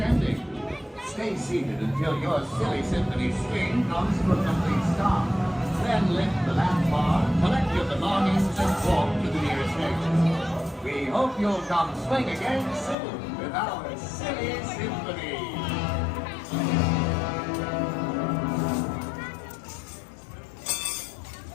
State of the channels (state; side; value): drops out; right; at 13.0 s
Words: Stay seated until your silly symphony swing comes to a complete stop. Then lift the lap bar, collect your belongings, and walk to the nearest exit. We hope you'll come swing again soon with our silly symphony.